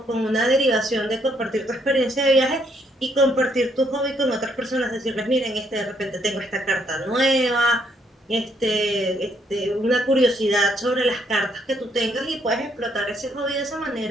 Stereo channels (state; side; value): normal; both; correlation 0.71